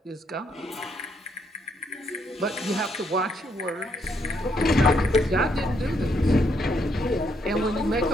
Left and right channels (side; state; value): both; normal; correlation 0.74